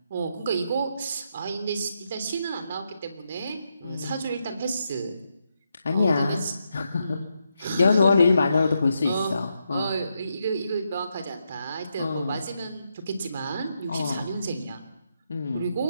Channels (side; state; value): both; inverted; correlation -0.82